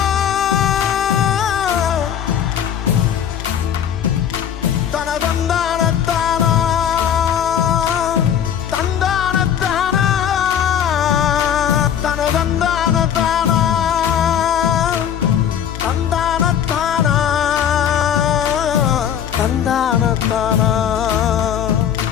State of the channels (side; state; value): right; quieter; 9.1 dB